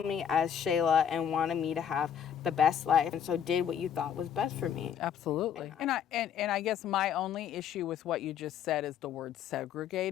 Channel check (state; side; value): quieter; right; 8.7 dB